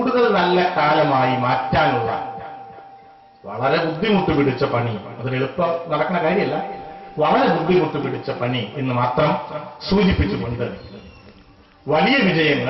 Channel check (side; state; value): both; identical; correlation 1.00